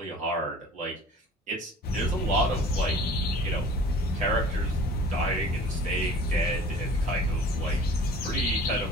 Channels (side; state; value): both; normal; correlation 0.46